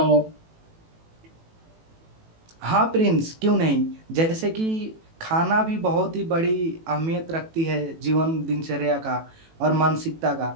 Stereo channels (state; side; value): late; left; 18 ms